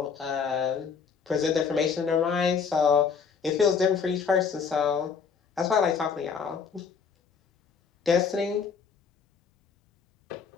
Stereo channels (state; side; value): quieter; right; 6.0 dB